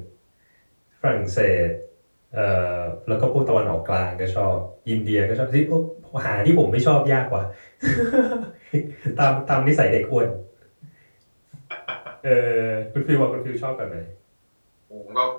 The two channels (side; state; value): both; inverted; correlation -1.00